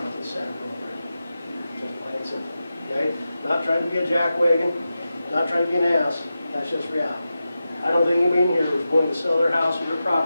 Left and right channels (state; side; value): inverted; both; correlation -0.92